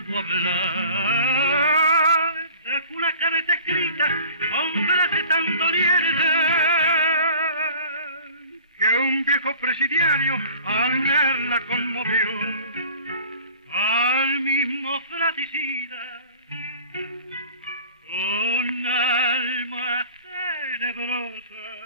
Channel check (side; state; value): both; inverted; correlation -0.45